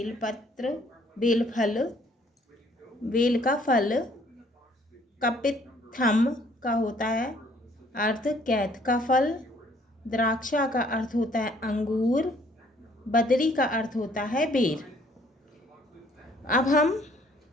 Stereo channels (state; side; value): normal; both; correlation 0.61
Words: बेलफल, बेल का फल। कपित्थम का होता है अर्थ कैथ का फल। द्राक्षा का अर्थ होता है अंगूर। बदरी का अर्थ होता है बेर। अब हम